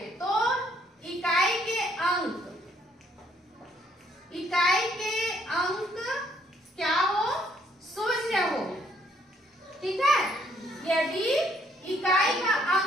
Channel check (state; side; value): normal; both; correlation 0.68